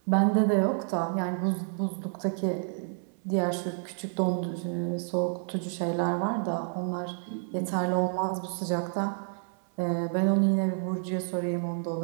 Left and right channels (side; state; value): left; silent; 58 dB below the other